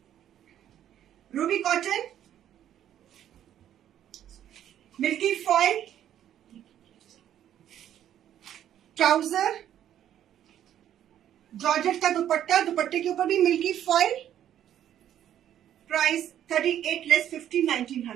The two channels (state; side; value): quieter; left; 10.8 dB